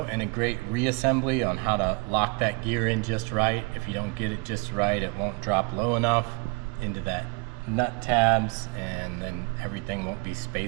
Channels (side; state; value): left; quieter; 30.4 dB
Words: and a great reassembly on how to lock that gear in just right. If you don't get it just right, it won't drop low enough into that nut tabs, and then everything won't be